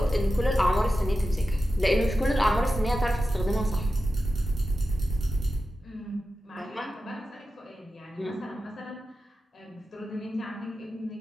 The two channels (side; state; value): both; normal; correlation 0.92